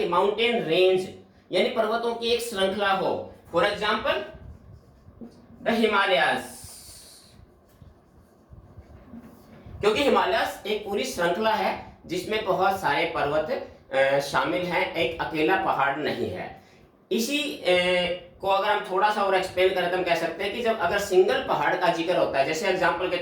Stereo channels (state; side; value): identical; both; correlation 1.00